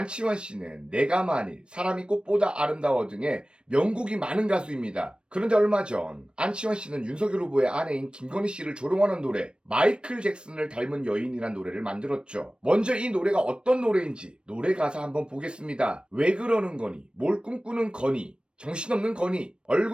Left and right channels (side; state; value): left; late; 0.055 ms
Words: 씨는 내가 만일, 사람이 꽃보다 아름다워 등의 명곡이 많은 가수입니다. 그런데 얼마 전 안치환 씨는 윤석열 후보의 아내인 김건희 씨를 조롱하는 노래 마이클 잭슨을 닮은 여인이란 노래를 만들었죠. 먼저 이 노래가 어떤 노래인지 노래 가사 한번 보겠습니다. 왜 그러는 거니, 뭘 꿈꾸는 거니, 정신없는 거니,